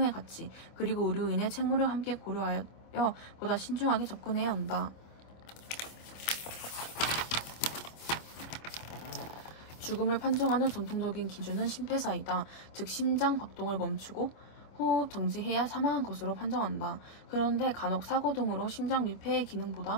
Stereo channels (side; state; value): right; late; 26 ms